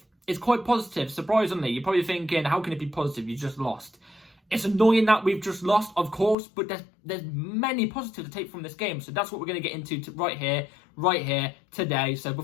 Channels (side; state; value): right; drops out; at 6.4 s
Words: It's quite positive, surprisingly. You're probably thinking, how can it be positive? You just lost. It's annoying that we've just lost, of course, but there's many positives to take from this game. So that's what we're going to get into right here, today. So